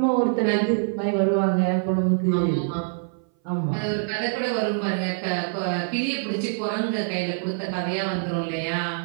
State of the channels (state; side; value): silent; left; 58 dB below the other